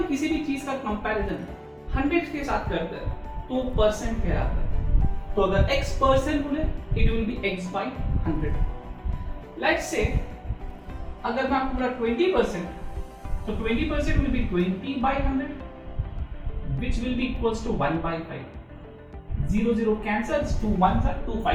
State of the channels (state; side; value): identical; both; correlation 1.00